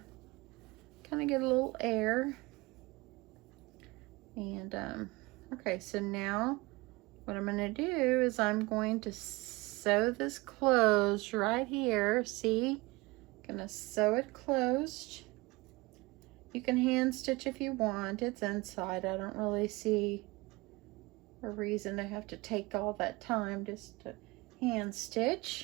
of get a little air. And okay, so now what I'm going to do is I'm going to sew this closed right here. See? I'm going to sew it closed. You can hand stitch if you want. It's inside. I don't really see a reason to have to take all that time just to hand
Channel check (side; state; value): left; quieter; 23.1 dB